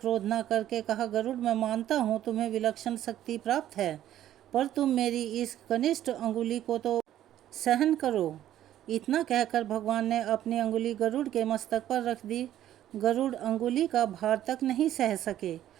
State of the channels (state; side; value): quieter; left; 12.2 dB